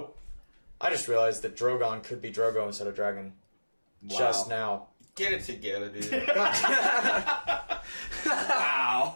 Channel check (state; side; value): inverted; both; correlation -1.00